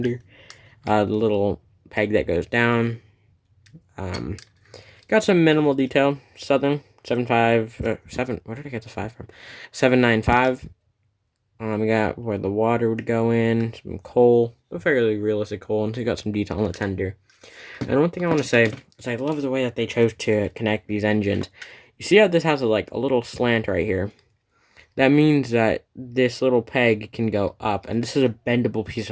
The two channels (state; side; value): identical; both; correlation 1.00